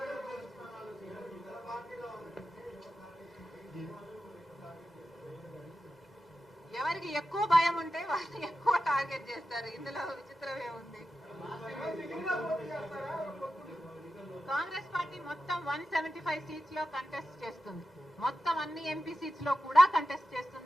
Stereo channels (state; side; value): normal; both; correlation 0.91